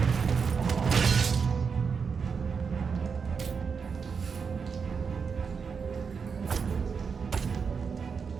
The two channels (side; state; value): left; quieter; 5.8 dB